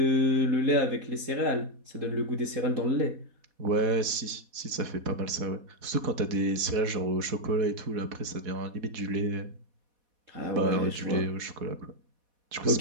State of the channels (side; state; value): left; late; 4.1 ms